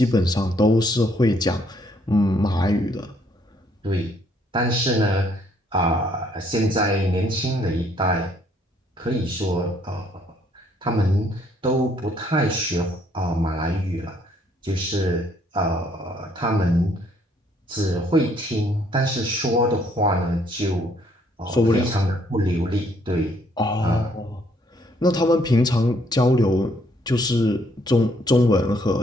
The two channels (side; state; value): both; normal; correlation 0.67